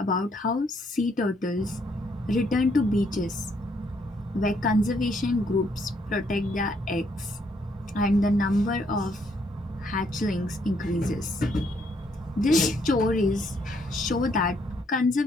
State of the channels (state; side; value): normal; both; correlation 0.71